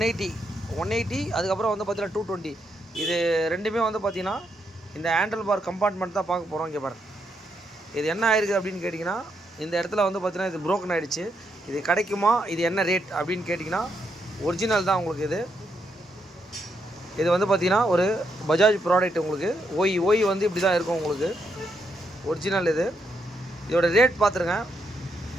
அதுக்கப்புறம் வந்து பார்த்தீங்கன்னா 220 இது ரெண்டுமே வந்து பார்த்தீங்கன்னா இந்த ஹேண்டில் பார் கம்பார்ட்மெண்ட் தான் பார்க்க போகிறோம். இங்கே பாருங்க, இது என்ன ஆயிருக்கு அப்படின்னு கேட்டிங்கன்னா, இந்த இடத்துல வந்து பார்த்தீங்கன்னா இது ப்ரோக்கன் ஆகிடுச்சு. இது கிடைக்குமா, இது என்ன ரேட் அப்படின்னு கேட்டிங்கன்னா, ஒரிஜினல் தான் உங்களுக்கு. இது வந்து பார்த்தீங்கன்னா ஒரு பஜாஜ் ப்ராடக்ட். உங்களுக்கு ஓய் வந்து இப்படி தான் இருக்கும் உங்களுக்கு ஒரிஜினல். இதோட ரேட் பார்த்துருங்க,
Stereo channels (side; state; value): both; normal; correlation 0.79